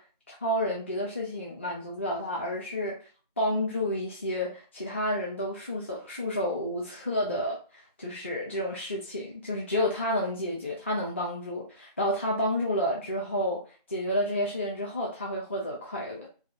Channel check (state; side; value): inverted; both; correlation -0.36